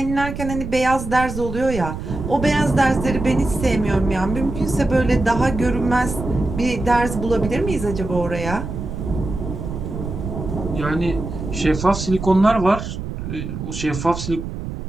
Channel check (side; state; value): right; noise; rumble, 7 dB below the sound